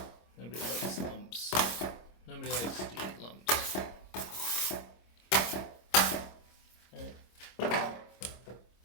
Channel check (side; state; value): right; late; 25 ms